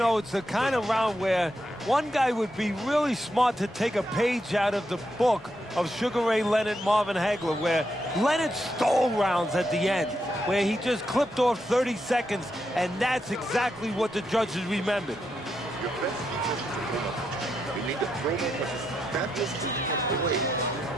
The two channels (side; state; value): both; normal; correlation 0.82